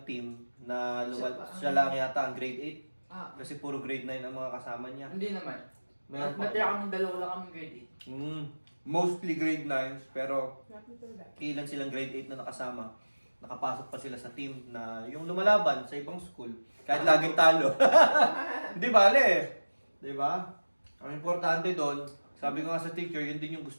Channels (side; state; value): both; inverted; correlation -1.00